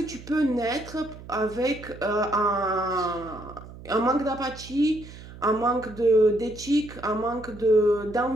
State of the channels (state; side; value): noise; right; hum, 16 dB below the sound